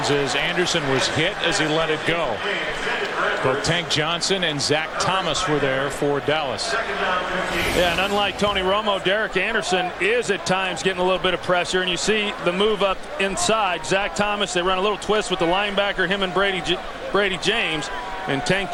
as Anderson was hit as he let it go. Both Tank Johnson and Zach Thomas were there for Dallas. Yeah, and unlike Tony Romo, Derek Anderson is at times getting a little bit of pressure, and you see the move up inside. Zach Thomas, they run a little twist with the linebacker, him and Brady James, and Tank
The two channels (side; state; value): both; identical; correlation 1.00